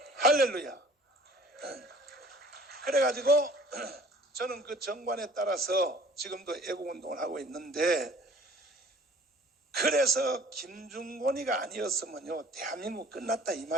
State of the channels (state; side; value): normal; both; correlation 0.51